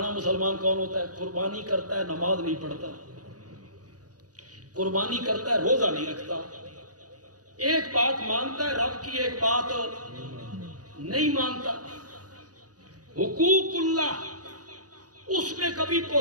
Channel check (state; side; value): late; left; 0.68 ms